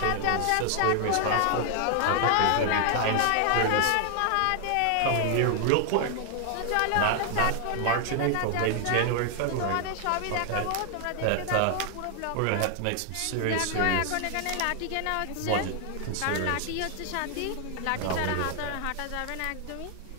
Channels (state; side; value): different; both; correlation 0.00